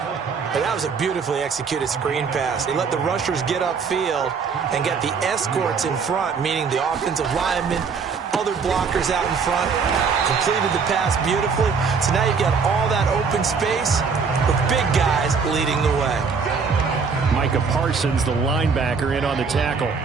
And that was a beautifully executed screen pass. They let the rushers get upfield and get the escorts in front, meaning the offensive linemen, other blockers out in front, completed the pass beautifully. So now you've got all that open space with big guys leading the way. Micah Parsons, the linebacker, in on the tackle.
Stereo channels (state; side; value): quieter; left; 5.5 dB